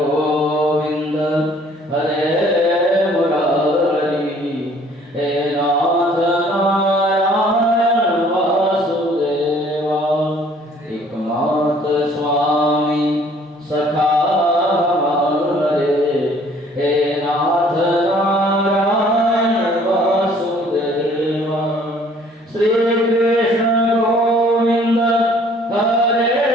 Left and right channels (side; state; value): both; normal; correlation 0.57